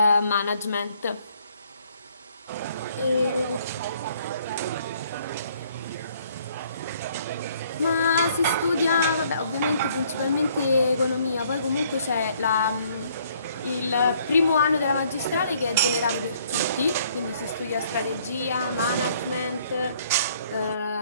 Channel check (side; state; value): both; inverted; correlation -0.64